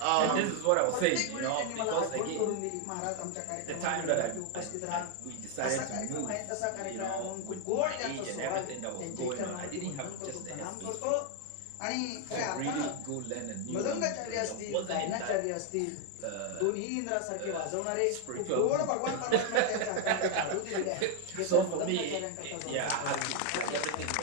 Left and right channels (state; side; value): different; both; correlation 0.01